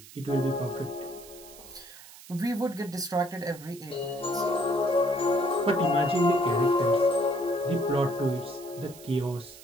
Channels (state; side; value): noise; right; hiss, 19 dB below the sound